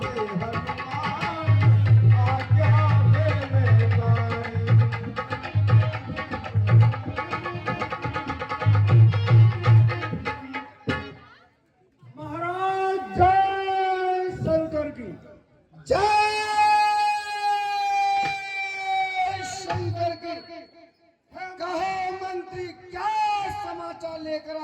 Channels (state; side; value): identical; both; correlation 1.00